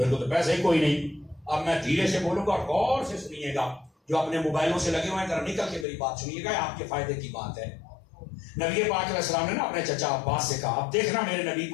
کو تو پیسے ہی کوئی نہیں اب میں دھیرے سے بولوں گا اور غور سے سنیے گا جو اپنے موبائلوں سے لگے ہوئے ہیں ذرا نکل کے میری بات سنیے گا آپ کے فائدے کی بات ہے نبی پاک علیہ السلام نے نا اپنے چچا عباس سے کہا اب دیکھنا میرے نبی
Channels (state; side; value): drops out; right; at 5.9 s